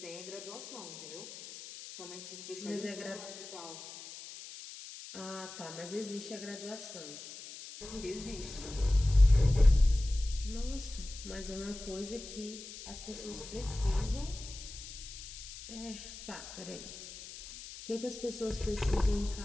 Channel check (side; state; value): left; noise; hiss, 13 dB below the sound